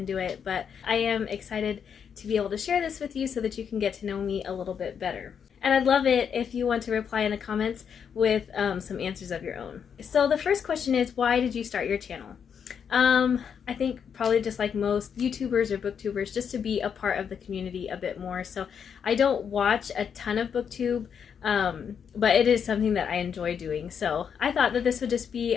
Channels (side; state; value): right; quieter; 7.3 dB